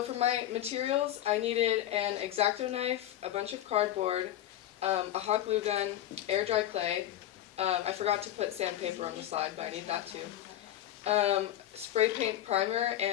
for my materials, I needed an X-Acto knife, a bunch of cardboard, a hot glue gun, air dry clay. I forgot to put sandpaper on the slide, but I need that too. Spray paint primer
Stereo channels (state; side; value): quieter; right; 12.5 dB